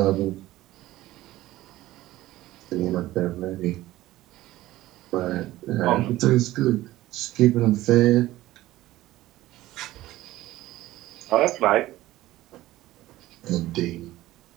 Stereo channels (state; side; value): quieter; left; 16.2 dB